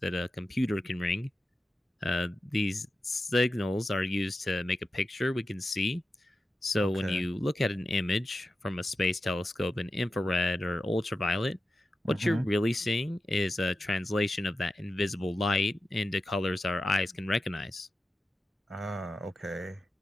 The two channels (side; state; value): both; normal; correlation 0.92